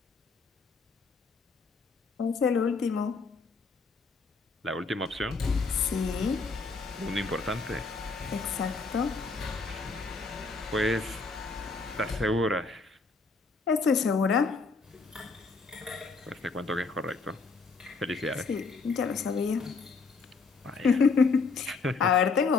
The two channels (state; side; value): quieter; right; 4.3 dB